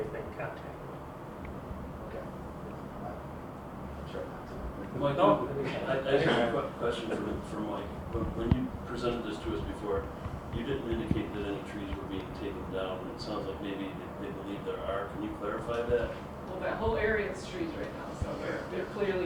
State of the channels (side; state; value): both; identical; correlation 1.00